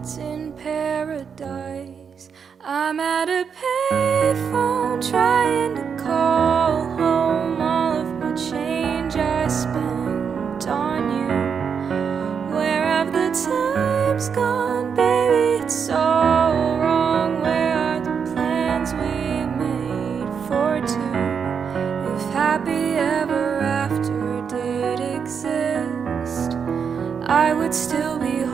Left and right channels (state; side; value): quieter; left; 6.6 dB